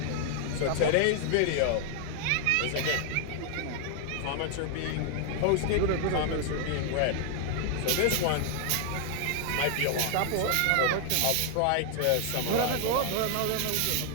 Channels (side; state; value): both; different; correlation 0.00